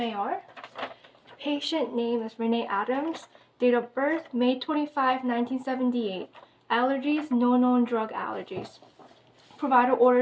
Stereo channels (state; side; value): identical; both; correlation 1.00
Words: Patient name is Renee Adams. Date of birth, May 25, 1978. Allergies, no known drug allergies. Provider